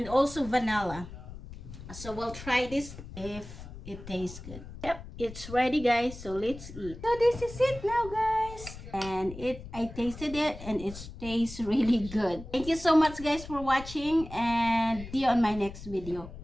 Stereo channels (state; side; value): noise; left; rumble, 13 dB below the sound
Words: also vanilla. So we'll try this if it tastes good. Yep, it's ready, guys, so let's eat. So this is it now, guys, and I tasted it and it tastes really good. Thank you so much, guys, for watching, and see you on my next video.